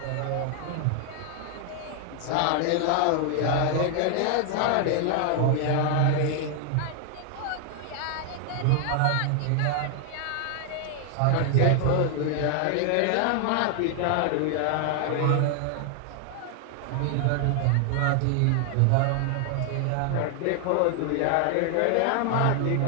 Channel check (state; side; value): different; both; correlation 0.00